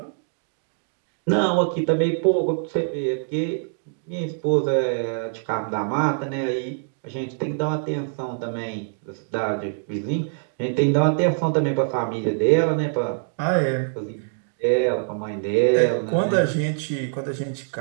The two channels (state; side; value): silent; left; digital silence